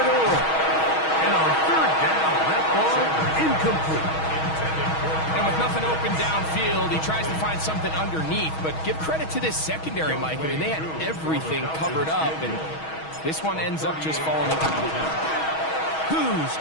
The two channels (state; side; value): late; right; 6.3 ms